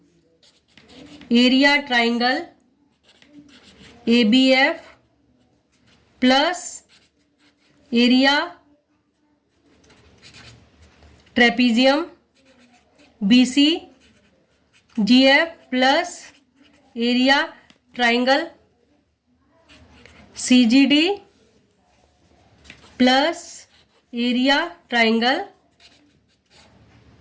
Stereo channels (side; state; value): both; identical; correlation 1.00